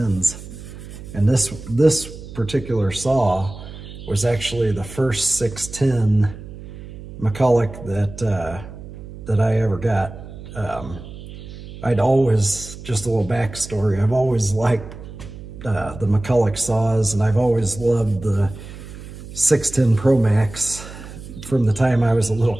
And this particular saw was actually the first 610 McCulloch that I ever got. I'd always, just a little backstory, I've always liked the McCulloch saws, and I've always loved the 610 Pro Macs. From the time I was a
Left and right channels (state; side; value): noise; right; hum, 14 dB below the sound